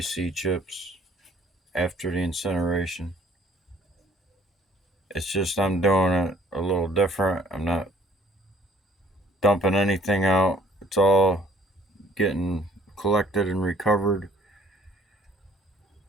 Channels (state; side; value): normal; both; correlation 0.57